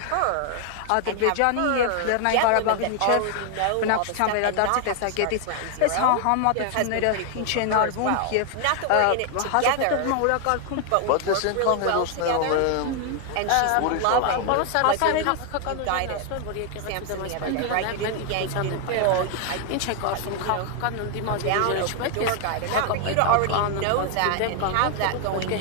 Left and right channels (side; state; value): both; different; correlation 0.00